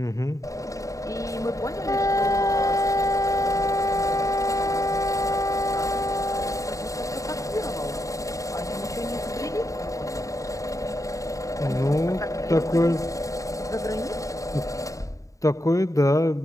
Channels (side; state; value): right; late; 0.16 ms